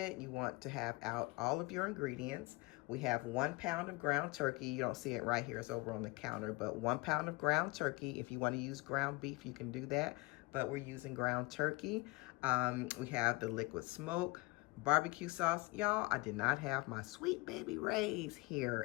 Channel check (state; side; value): quieter; right; 24.9 dB